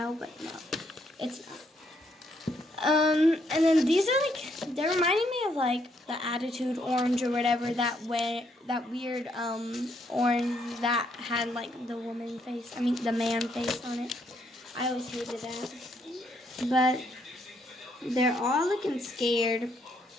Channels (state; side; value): normal; both; correlation 0.73